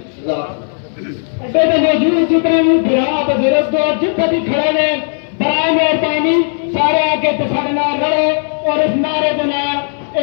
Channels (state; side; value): silent; right; digital silence